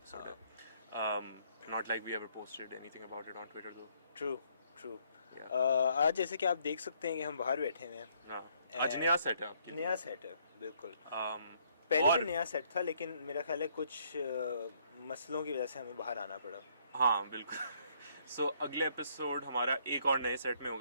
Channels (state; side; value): inverted; both; correlation -0.67